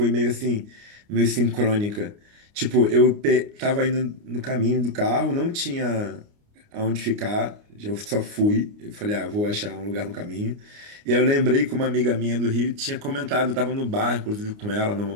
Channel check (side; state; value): left; late; 29 ms